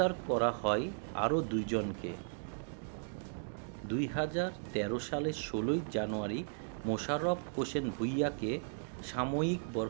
করা হয় আরও 2 জনকে। 2013 সালের 16 জানুয়ারি মোশাররফ হোসেন ভূঁইয়াকে সাময়িক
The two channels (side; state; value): left; silent; digital silence